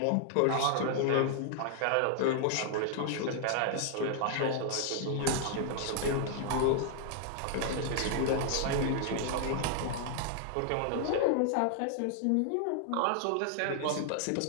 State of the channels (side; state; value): both; different; correlation -0.01